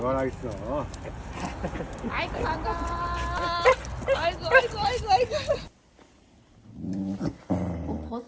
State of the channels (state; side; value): identical; both; correlation 1.00